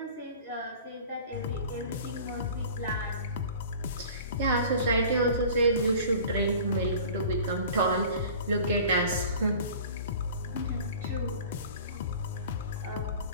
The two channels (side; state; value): both; inverted; correlation -0.43